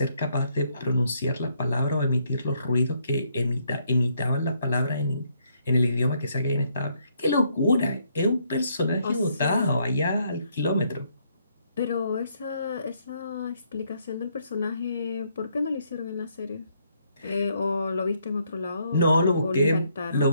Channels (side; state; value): both; inverted; correlation -0.72